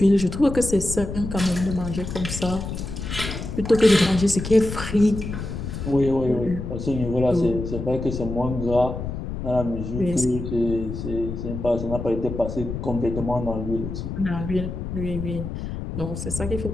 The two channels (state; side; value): noise; left; rumble, 6 dB below the sound